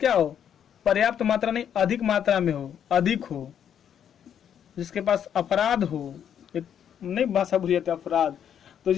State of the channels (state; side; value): quieter; right; 9.0 dB